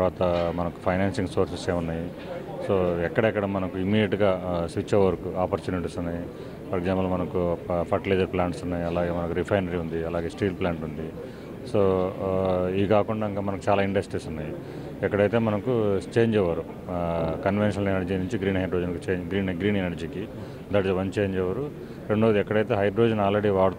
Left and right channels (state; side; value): identical; both; correlation 1.00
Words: మనకు ఫైనాన్సింగ్ సోర్సెస్ ఏమున్నాయి, సో ఎక్కడెక్కడ మనకు ఇమీడియట్గా స్విచ్ ఓవర్కు ఆపర్చునిటీస్ ఉన్నాయి. ఫర్ ఎగ్జాంపుల్ మనకు ఫర్టిలైజర్ ప్లాంట్స్ ఉన్నాయి, అలాగే మనకు రిఫైనరీ ఉంది, అలాగే స్టీల్ ప్లాంట్ ఉంది. సో ఇవి కాకుండా ఇంకా మనకు చాలా ఇండస్ట్రీస్ ఉన్నాయి. ఎక్కడైతే మనకు చేంజ్ ఓవర్ కన్వెన్షనల్ ఎనర్జీ నుంచి గ్రీన్ హైడ్రోజన్కి గ్రీన్ ఎనర్జీకి, that is one change over. రెండోది ఎక్కడైతే హైడ్రోజన్ ఆల్రెడీ